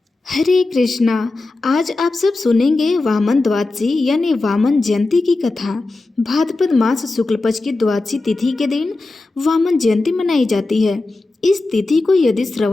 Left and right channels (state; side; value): quieter; right; 3.2 dB